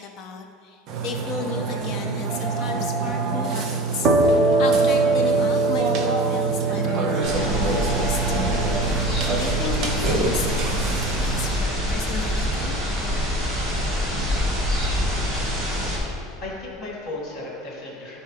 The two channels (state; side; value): normal; both; correlation 0.39